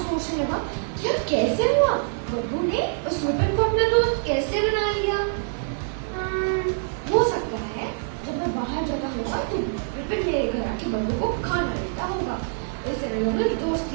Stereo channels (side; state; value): left; silent; digital silence